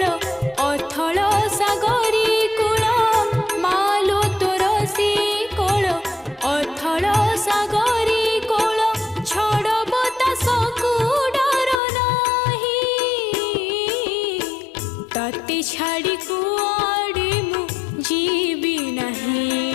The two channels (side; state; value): right; drops out; at 11.8 s